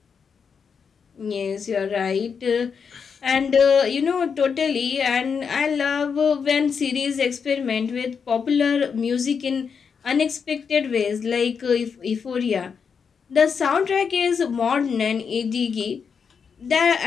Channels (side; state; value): right; quieter; 6.2 dB